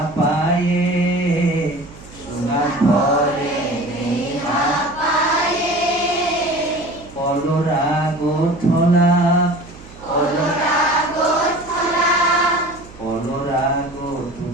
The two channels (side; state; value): right; noise; hum, 20 dB below the sound